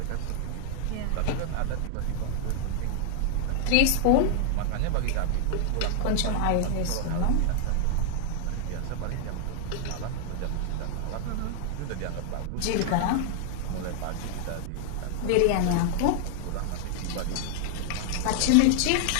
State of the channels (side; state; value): both; different; correlation 0.00